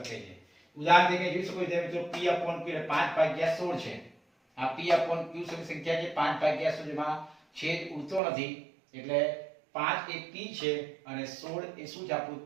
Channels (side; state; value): left; drops out; at 8.2 s